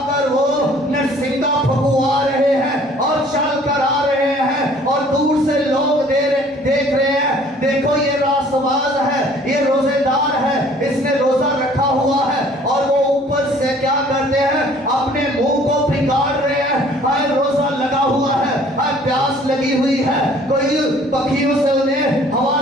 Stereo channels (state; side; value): normal; both; correlation 0.55